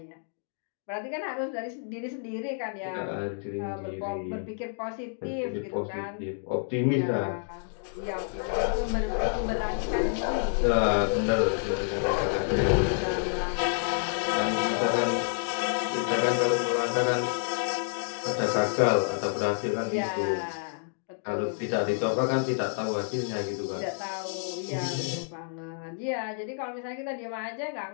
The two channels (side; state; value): right; silent; digital silence